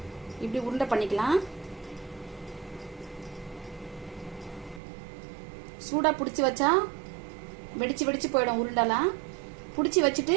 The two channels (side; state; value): left; drops out; at 4.8 s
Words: இப்படி உருண்டை பண்ணிக்கலாம். சூடா பிடிச்சி வச்சா வெடிச்சு போயிடும் உருண்டெல்லாம். பிடிச்சி